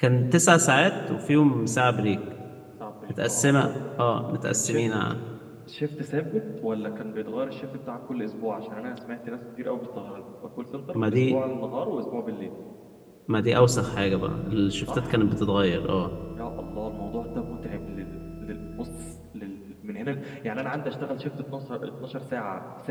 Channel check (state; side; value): identical; both; correlation 1.00